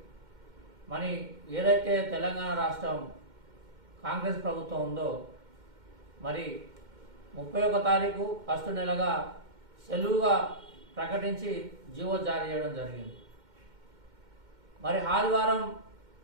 మరి ఏదైతే తెలంగాణ రాష్ట్రం కాంగ్రెస్ ప్రభుత్వం ఉందో మరి 31 తారీఖు ఫస్ట్ నెలగా సెలవుగా ప్రకటించి జీవో జారీ చేయడం జరిగింది. మరి ఆదివారం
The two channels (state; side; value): late; left; 2.1 ms